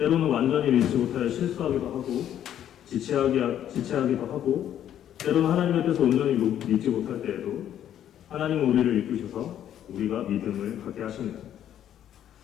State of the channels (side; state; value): right; quieter; 10.6 dB